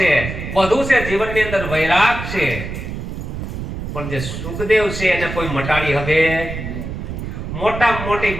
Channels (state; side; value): noise; right; rumble, 6 dB below the sound